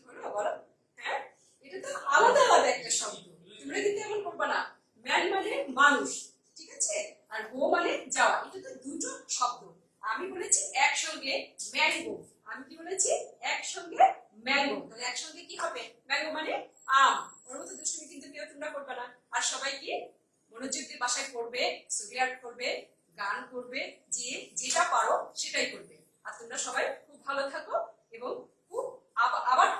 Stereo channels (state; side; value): identical; both; correlation 1.00